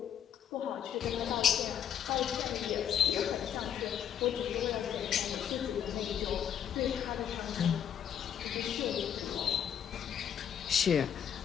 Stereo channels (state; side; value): quieter; right; 9.1 dB